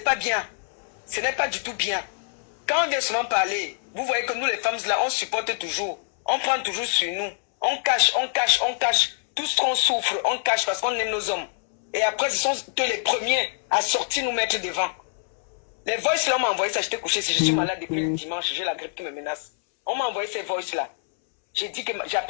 bien. Ce n'est pas du tout bien. Quand on vient souvent parler, vous voyez que nous les femmes là, on supporte toujours. On prend toujours sur nous. On cache, on cache, on cache. Tout ce qu'on souffre, on cache parce qu'on aime nos hommes. Et après, ce sont eux les premiers à sortir nous mettre devant. Les voices là, on m'a envoyé ça, j'étais couché. Si je suis malade depuis le dimanche, j'ai la grippe qui me menace. On m'a envoyé ces voices là. J'ai dit que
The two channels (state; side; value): silent; right; 61 dB below the other